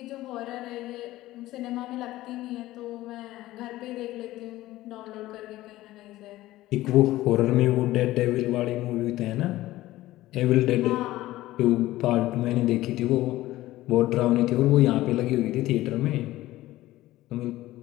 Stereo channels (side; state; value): right; quieter; 16.4 dB